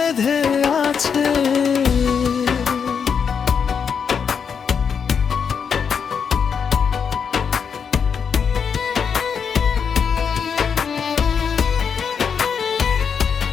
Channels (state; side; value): quieter; right; 6.7 dB